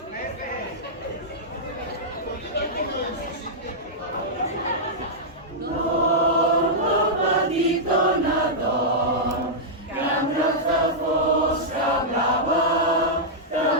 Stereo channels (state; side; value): normal; both; correlation -0.09